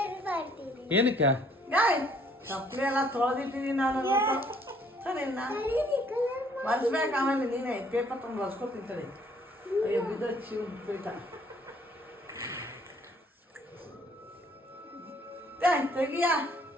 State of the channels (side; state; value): both; normal; correlation 0.62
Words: ಏನಕ್ಕೆ? ಚಪ್ಪಲಿ ಎಲ್ಲ ತೊಳೆದಿಟ್ಟಿದ್ದೀನಿ ನಾನು. ಒರೆಸ್ಬೇಕು, ಆಮೇಲೆ ನೀನೇ ಪೇಪರ್ ತಂದು ಒರೆಸ್ಕೊತಿಂತೇಳಿ. ಅಯ್ಯೋ ಬಿದ್ದು ಶಿವ ಪೀಠ ತೆಗಿಯ